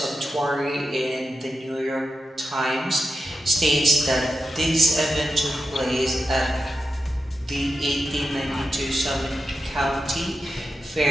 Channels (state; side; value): normal; both; correlation 0.89